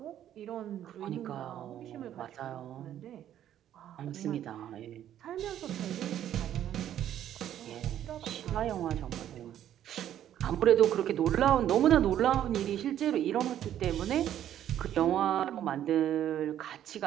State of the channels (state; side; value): quieter; left; 11.1 dB